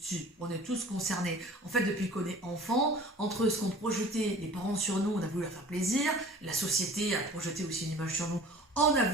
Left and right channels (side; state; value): both; normal; correlation 0.45